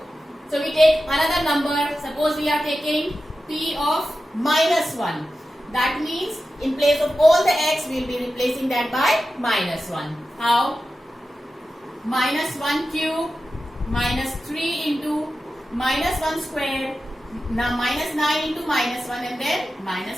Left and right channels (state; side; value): normal; both; correlation 0.92